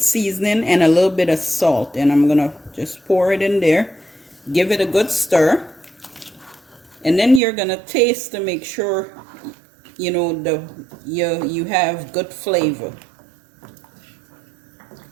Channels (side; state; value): left; drops out; at 7.4 s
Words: seasoning, and a little bit of salt. And I'm gonna just pour it in there, give it a good stir, and then you're gonna taste to make sure you know you have good flavor.